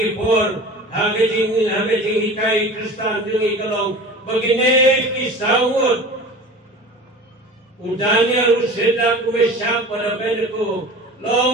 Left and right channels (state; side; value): normal; both; correlation 0.37